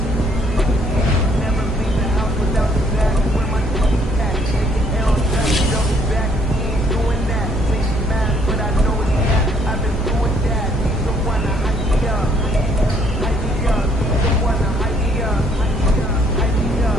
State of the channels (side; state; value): both; normal; correlation 0.65